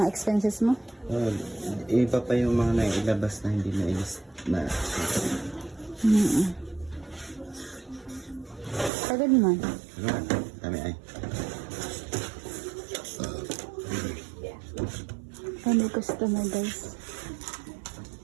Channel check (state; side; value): drops out; left; at 8.9 s